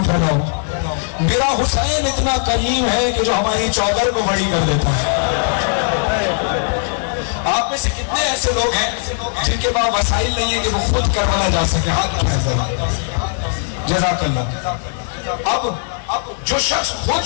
پھیلاؤ. میرا حسین اتنا کریم ہے کہ جو ہماری چادر کو بڑی کر دیتا ہے. آپ میں سے کتنے ایسے لوگ ہیں جن کے پاس وسائل نہیں ہے کہ وہ خود کربلا جا سکے؟ ہاتھ اٹھائیں ذرا. جزاک اللہ. اب جو شخص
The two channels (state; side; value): silent; right; 67 dB below the other